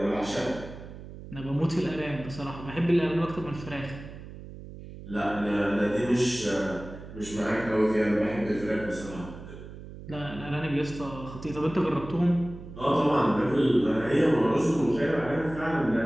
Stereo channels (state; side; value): noise; right; hum, 14 dB below the sound